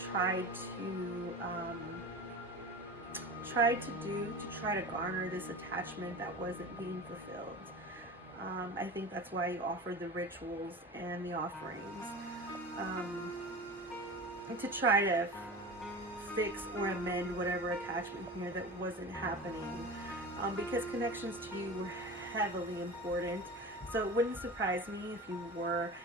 tried to do to try to garner this attachment that wasn't being fulfilled. I think that's why you offered the rituals and the offerings, to try to fix or amend whatever attachment here that wasn't happening, because connections to you were heavily important. So it wouldn't surprise me if you were,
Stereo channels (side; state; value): both; normal; correlation 0.32